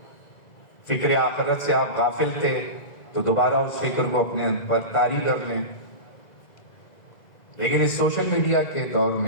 فکر آخرت سے آپ غافل تھے تو دوبارہ اس فکر کو اپنے پر طاری کر لیں۔ لیکن اس سوشل میڈیا کے دور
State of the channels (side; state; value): right; late; 2.0 ms